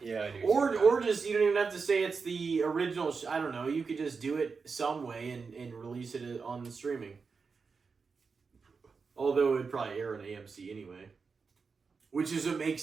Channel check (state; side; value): quieter; left; 5.0 dB